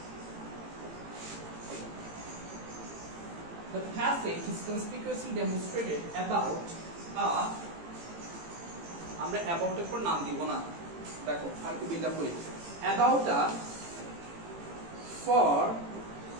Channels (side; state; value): left; late; 18 ms